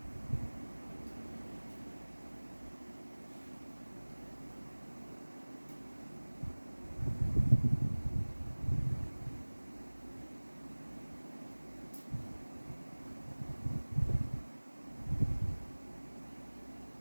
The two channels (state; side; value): inverted; both; correlation -1.00